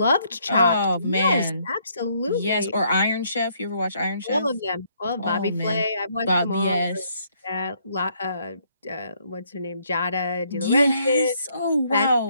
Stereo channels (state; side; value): inverted; both; correlation -0.69